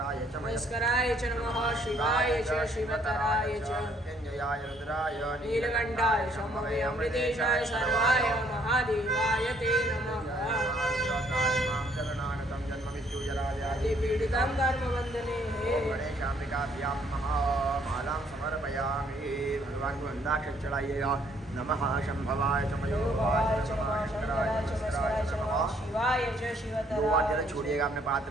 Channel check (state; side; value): normal; both; correlation 0.65